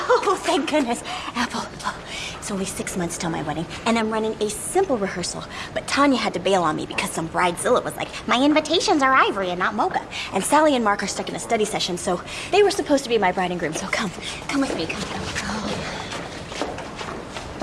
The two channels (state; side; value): identical; both; correlation 1.00